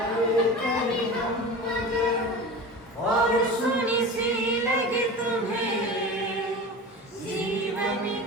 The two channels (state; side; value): normal; both; correlation 0.32